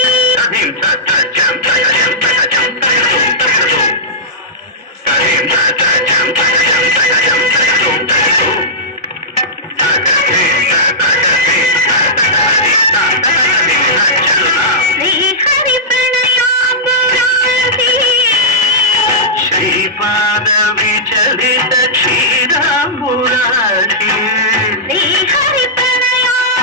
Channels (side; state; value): both; normal; correlation -0.14